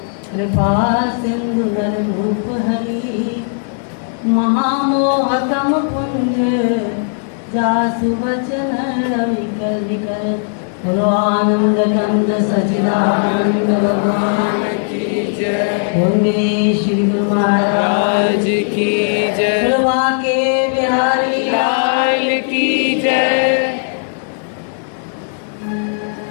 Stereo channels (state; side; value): silent; right; 69 dB below the other